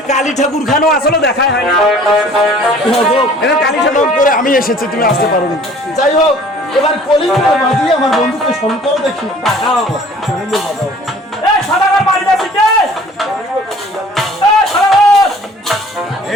কালী ঠাকুর খানো আসলে দেখাই হয় না কালী ঠাকুর করে আমি এসেছি, তুমি আসতে পারোনি। যাই হোক, এবার কলিঙ্গ বাজিয়ে আমার বন্ধুকে স্মরণ করো দেখি। এই সাদাগার বাড়ি যাচ্ছে কে? এই সাদাগার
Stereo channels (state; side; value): normal; both; correlation 0.51